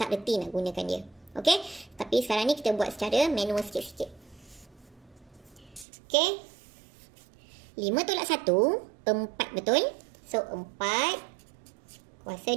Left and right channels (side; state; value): left; drops out; at 5.9 s